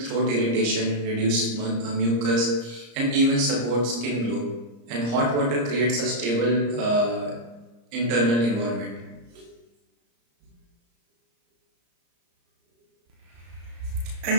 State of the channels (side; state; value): left; late; 34 ms